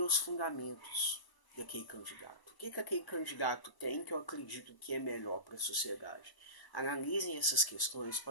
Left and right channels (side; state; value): right; late; 1.0 ms